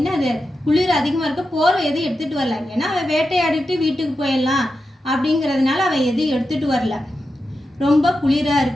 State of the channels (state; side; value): normal; both; correlation 0.89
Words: குளிர் அதிகமாக இருக்க போர்வை எதுவும் எடுத்துகிட்டு வரல. ஏன்னா அவன் வேட்டையாடிட்டு வீட்டுக்கு போயிடலாம் அப்படிங்கிறதுனால அவன் எதுவும் எடுத்துகிட்டு வரல. ரொம்ப குளிராக